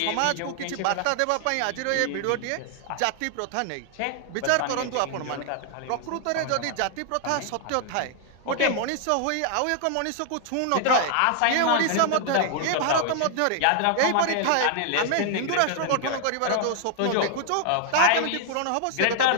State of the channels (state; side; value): different; both; correlation 0.00